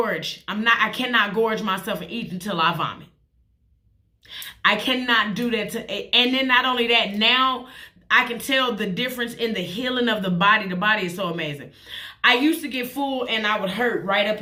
I cannot gorge myself and eat until I vomit. I cannot do that and then not only that, now I can tell the difference in the healing of the body. The body is so amazing. I used to get full and I would hurt right up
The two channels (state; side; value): identical; both; correlation 1.00